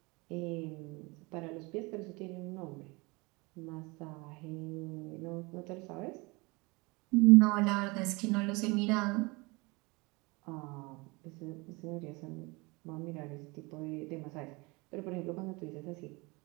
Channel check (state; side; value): quieter; left; 26.1 dB